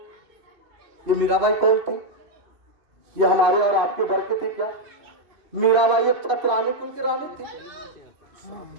ये मीराबाई कौन थी? ये हमारे और आपके वर्ग की थी क्या? मीराबाई एक छत्रानी कुल की रानी थी।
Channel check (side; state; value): left; late; 2.6 ms